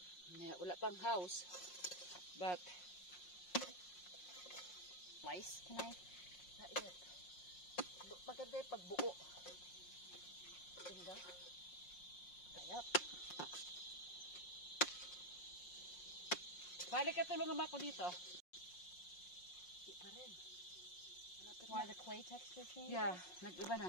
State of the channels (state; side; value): late; right; 5.6 ms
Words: Yeah, wala pang house. But Lice, can I? not yet. Maganda yung pagbuo. Tingnan. Ayap. Balik ka, tulungan mo ako dito. Di pa rin. Malapit Why na. the clay texture changes? Yeah, nag-iba